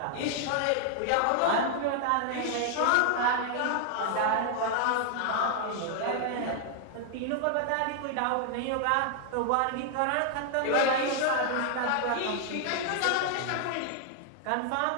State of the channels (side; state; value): both; different; correlation 0.00